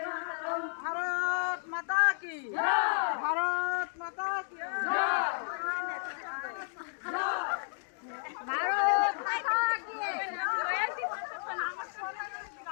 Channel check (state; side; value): silent; right; 56 dB below the other